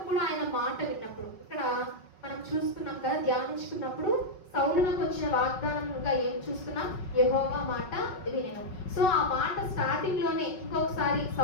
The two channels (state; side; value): late; right; 5.4 ms